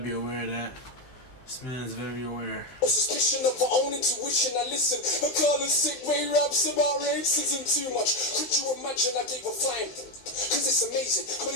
aware of that. This man's very aware. Suspicion of our own intuition. I listen. Akala sick way raps about racism too much. Could you imagine I gave a flying? Cause it's amazing.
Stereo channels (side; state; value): right; late; 16 ms